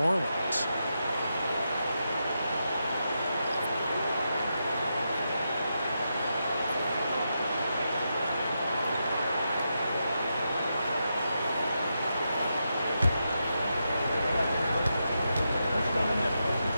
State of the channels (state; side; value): inverted; both; correlation -0.86